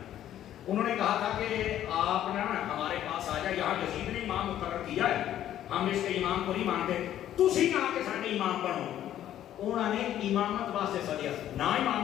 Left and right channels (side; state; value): right; quieter; 11.7 dB